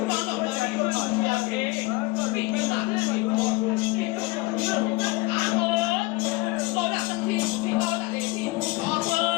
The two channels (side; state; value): right; quieter; 22.0 dB